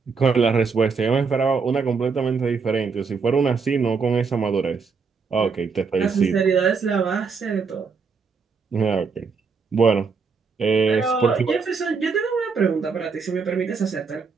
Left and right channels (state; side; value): quieter; left; 5.2 dB